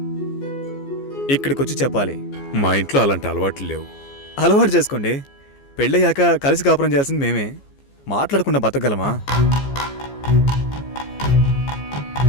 ఇక్కడికి వచ్చి చెప్పాలి. మా ఇంట్లో అలాంటి అలవాట్లు లేవు. అలవాటు చేసుకోండి. పెళ్ళయ్యాక కలిసి కాపురం చేయాల్సింది మేమే. మాట్లాడకుండా బతకగలమా?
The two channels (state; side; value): late; right; 14 ms